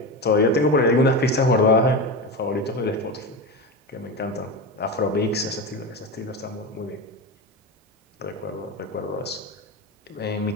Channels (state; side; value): normal; both; correlation 0.20